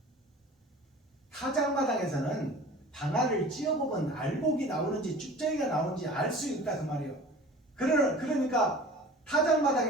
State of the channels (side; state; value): both; normal; correlation 0.42